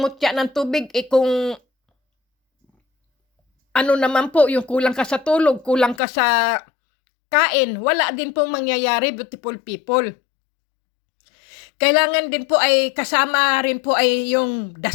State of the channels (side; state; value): right; drops out; at 6.0 s